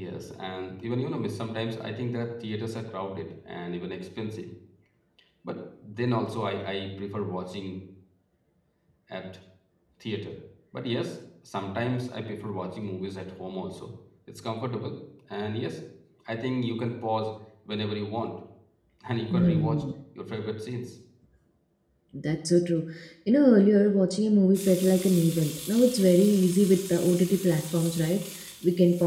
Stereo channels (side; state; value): both; identical; correlation 1.00